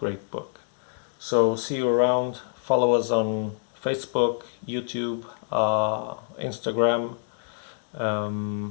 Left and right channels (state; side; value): silent; right; digital silence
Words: book. So see you around. Follow us on Facebook, YouTube, Instagram,